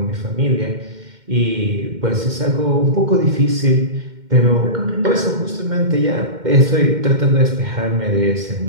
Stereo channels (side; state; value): left; late; 2.1 ms